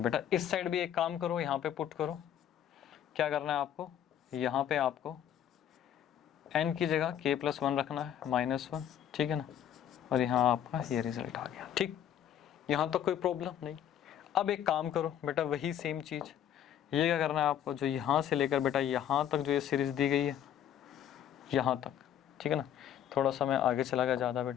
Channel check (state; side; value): quieter; right; 10.2 dB